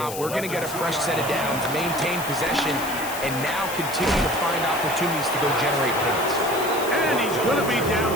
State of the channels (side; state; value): left; noise; hiss, 10 dB below the sound